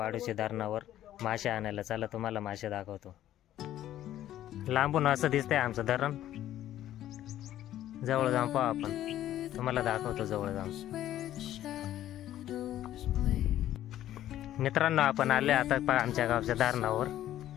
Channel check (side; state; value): right; quieter; 12.7 dB